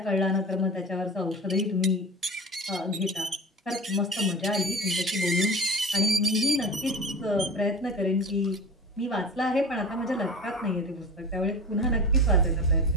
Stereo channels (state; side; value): normal; both; correlation 0.34